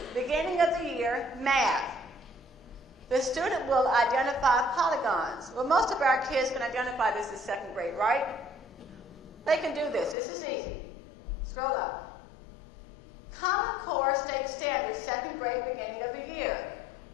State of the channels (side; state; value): right; drops out; at 10.2 s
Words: beginning of the year, math. The student will identify polygons. Well, most of our kids can identify this as second grade, right? They can do this. This is easy. Scroll up. Common Core State Standards, second grade, beginning of the year.